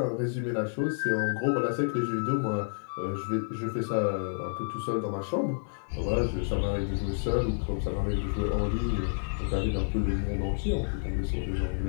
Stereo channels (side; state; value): right; silent; digital silence